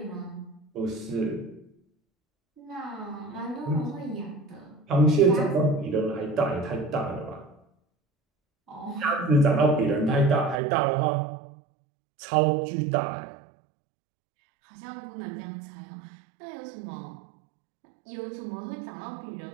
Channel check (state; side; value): drops out; left; at 10.6 s